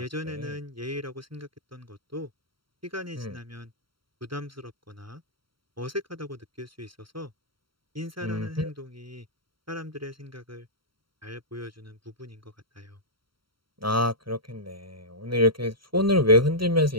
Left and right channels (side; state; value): left; late; 0.74 ms